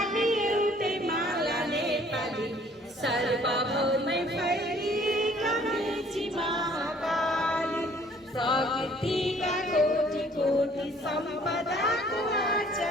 एउटै माला नेपाली, सर्वभौमै फैलिएका मेची महाकाली, प्रकृतिका कोटि कोटि सम्पदाको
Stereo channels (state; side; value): normal; both; correlation 0.57